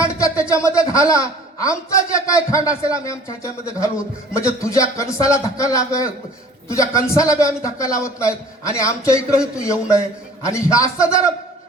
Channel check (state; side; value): normal; both; correlation 0.49